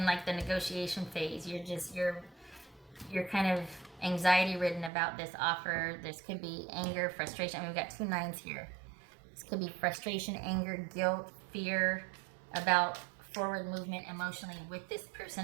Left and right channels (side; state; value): left; drops out; at 4.9 s